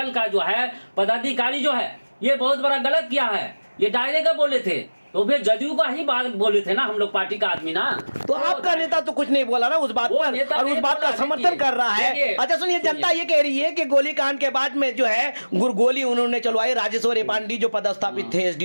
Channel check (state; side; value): inverted; both; correlation -1.00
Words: का जो है पदाधिकारी जो है, ये बहुत बड़ा गलत किया है, ये डायरेक्ट बोले थे। तो फिर जदयू का ही बात बोले थे ना हम लोग, पार्टी का आदमी ना। तो आपका नेता तो कुछ नहीं बोला ना उस बात पर, और उस बात का समर्थन कर रहा है। अच्छा सुनिए, जनता ये कह रही है कि गोलीकांड के बाद में जो है गोली उन्होंने चलवाई, राजेश्वरी पांडे जो पदस्थापित थे